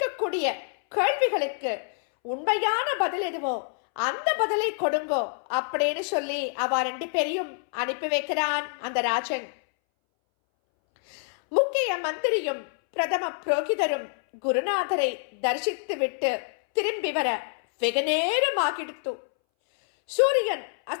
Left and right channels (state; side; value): silent; right; 60 dB below the other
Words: கேள்விகளுக்கு உண்மையான பதில் எதுவோ அந்த பதிலை கொடுங்கோ அப்படின்னு சொல்லி அவ 2 பேரையும் அனுப்பி வைக்கிறான் அந்த ராஜன். முக்கிய மந்திரியும் பிரதம புரோகிதரும் குருநாதரை தரிசித்து விட்டு திரும்பி வர வெகு நேரம் ஆகிடுத்து. சூரியன்